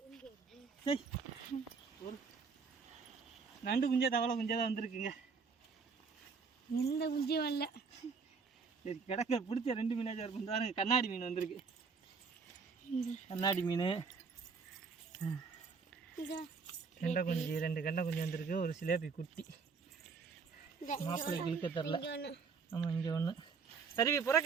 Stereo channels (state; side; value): quieter; left; 5.2 dB